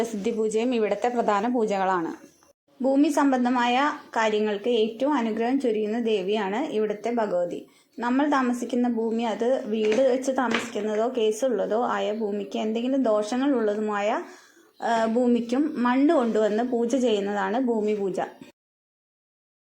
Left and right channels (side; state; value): both; identical; correlation 1.00